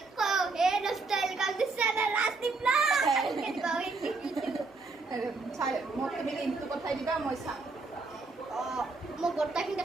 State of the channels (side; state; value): left; quieter; 3.9 dB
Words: কওঁ এই ষ্টাইল কাম দিছ চেনেল Rasdeep ব্লগ। আৰু চাই মোক তুমি লিংকটো পঠাই দিবা মই চাম। মই গোটেইখিনি